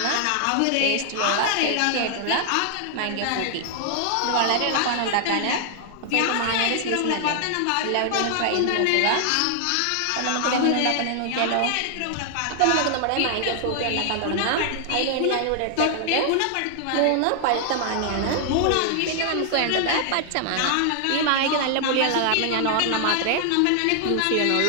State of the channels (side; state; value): both; different; correlation 0.00